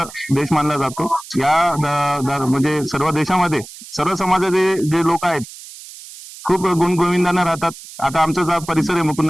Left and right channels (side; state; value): right; noise; hiss, 16 dB below the sound